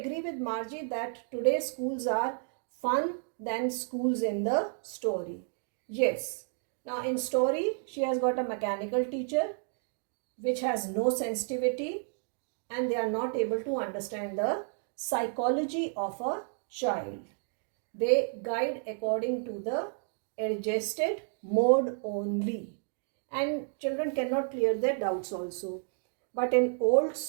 with Margie that today's schools are fun than schools in the story? Yes. Now in story, she has got a mechanical teacher which has no sensitivity and they are not able to understand the psychology of a child. They guide according to the adjusted mode only and children cannot clear their doubts also. But in old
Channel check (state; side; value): silent; left; 57 dB below the other